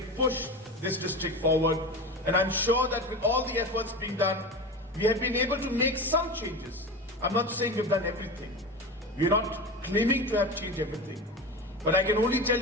push this district forward. And I'm sure that with all the efforts being done, we have been able to make some changes. I'm not saying we've done everything. We're not claiming to have changed everything. But I can only tell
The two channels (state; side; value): normal; both; correlation 0.27